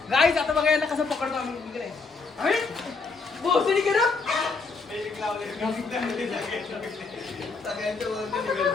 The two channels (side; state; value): right; quieter; 4.3 dB